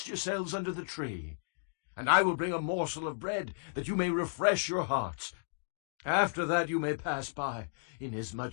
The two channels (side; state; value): right; silent; digital silence